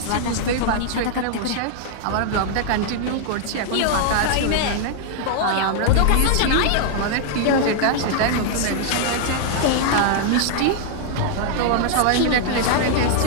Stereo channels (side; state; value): both; different; correlation 0.00